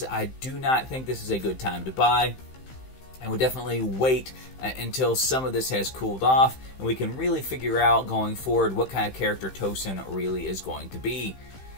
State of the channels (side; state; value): right; late; 15 ms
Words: I do not think this is a good time to buy. And would definitely wait until some of this has cooled off and we can really figure out going forward what kind of character Tosin really is going to be.